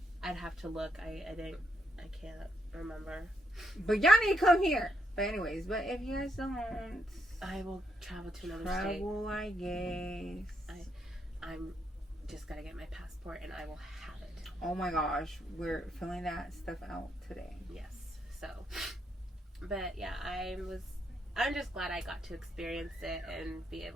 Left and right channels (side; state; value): both; normal; correlation 0.77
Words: I'd have to look. I can't remember. But y'all need to come here. But anyways, if you guys don't, I will travel to another state. I guess. I'm just gotta get my passport, and I will have it. Oh my gosh, we're filling that stuff out today. Yes. So, but yeah, I'm just glad I got to experience it and be